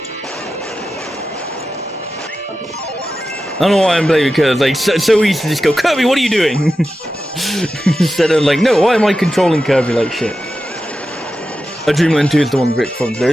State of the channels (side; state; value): both; normal; correlation 0.92